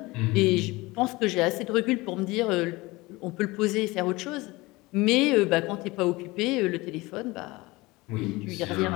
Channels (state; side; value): quieter; right; 21.9 dB